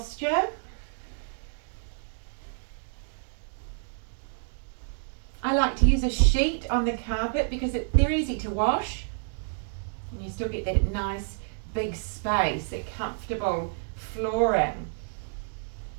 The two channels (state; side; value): silent; left; digital silence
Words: I like to use a sheet on the carpet because they're easy to wash. And you still get that nice big space, that comfortable flooring.